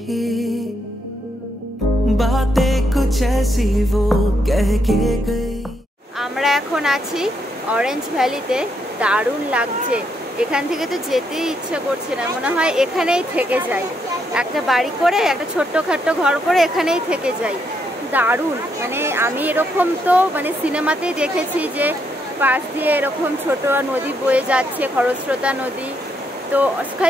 बातें कुछ ऐसी वो कह के गई। আমরা এখন আছি অরেঞ্জ ভ্যালিতে, দারুণ লাগছে। এখান থেকে তো যেতেই ইচ্ছে করছে না, মনে হয় এখানেই থেকে যাই, একটা বাড়ি করে একটা ছোট্টখাট্টো ঘর করে এখানেই থেকে যাই। দারুণ, মানে আমি এরকম তো মানে সিনেমাতেই দেখেছি যে পাশ দিয়ে এরকম ছোট নদী বয়ে যাচ্ছে, খরস্রোতা নদী, তো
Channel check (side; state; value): both; normal; correlation 0.77